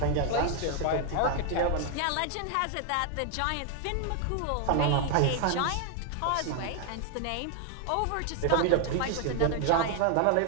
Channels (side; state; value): both; different; correlation 0.00